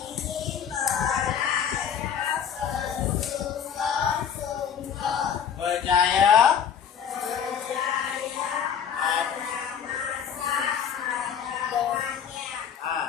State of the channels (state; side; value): quieter; right; 7.9 dB